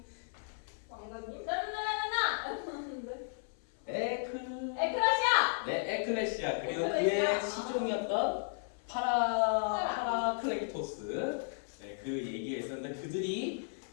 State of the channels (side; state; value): right; silent; 55 dB below the other